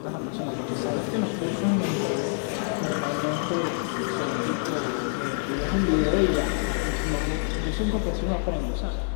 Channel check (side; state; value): right; silent; 60 dB below the other